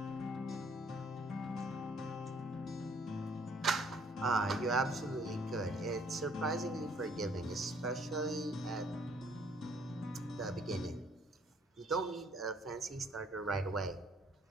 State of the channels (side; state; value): both; normal; correlation 0.62